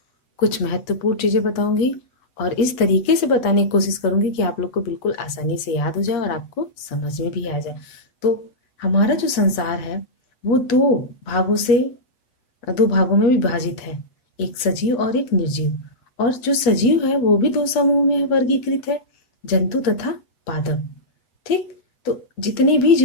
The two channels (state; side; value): late; right; 8.1 ms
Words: कुछ महत्वपूर्ण चीज़ें बताऊंगी और इस तरीके से बताने की कोशिश करूंगी कि आप लोग को बिल्कुल आसानी से याद हो जाए और आपको समझ में भी आ जाए। तो हमारा जो संसार है वो दो भागों में विभाजित है, एक सजीव और एक निर्जीव। और जो सजीव है वो भी दो समूह में वर्गीकृत है, जंतु तथा पादप। ठीक। तो जितने भी